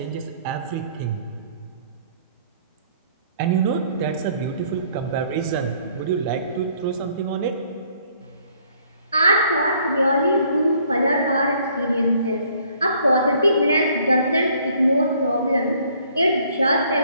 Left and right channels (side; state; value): both; inverted; correlation -0.62